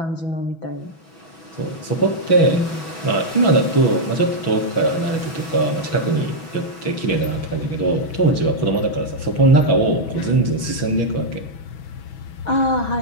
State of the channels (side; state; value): right; late; 6.1 ms